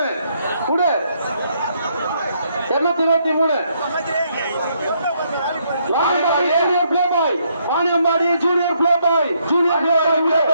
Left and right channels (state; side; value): inverted; both; correlation -0.73